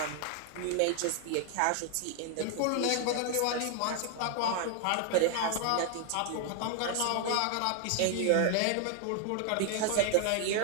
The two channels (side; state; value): both; different; correlation 0.00